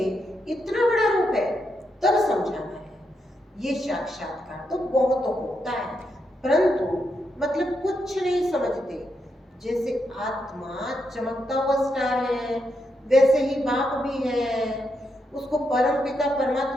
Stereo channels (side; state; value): both; normal; correlation 0.82